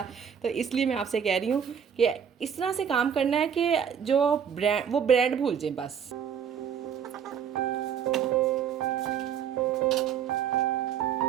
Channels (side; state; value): left; quieter; 7.9 dB